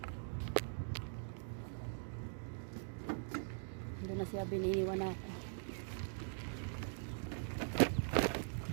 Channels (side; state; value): left; silent; digital silence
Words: Doon na siya, biniiwan ako.